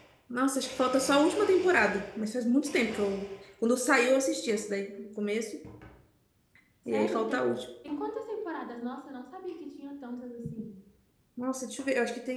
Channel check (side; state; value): both; identical; correlation 1.00